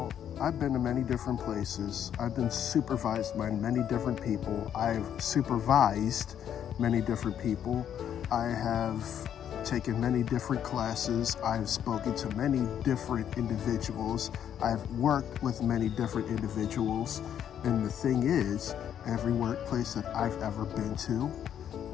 I've been to many different places. I've been supervised by many different people. I've supervised many different people. I have taken many different classes. I've spoken to many different individuals. I've worked with many different individuals. And the thing is, every workplace that I've ever been to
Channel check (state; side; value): quieter; right; 9.5 dB